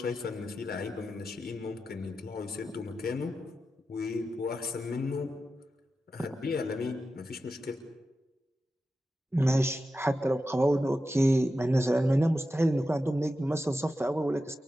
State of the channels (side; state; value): both; normal; correlation 0.91